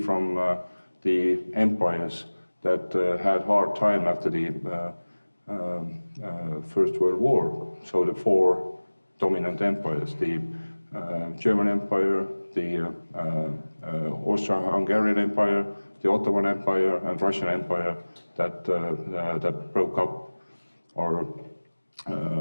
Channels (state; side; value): inverted; both; correlation -1.00